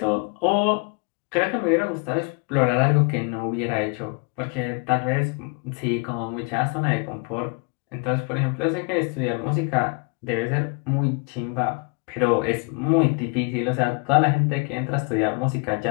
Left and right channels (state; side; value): quieter; right; 32.8 dB